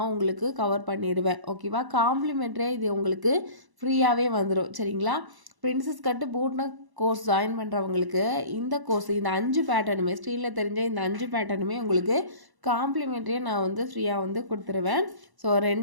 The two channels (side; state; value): left; late; 1.0 ms